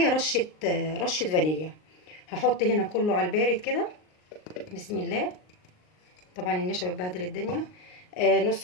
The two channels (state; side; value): late; right; 38 ms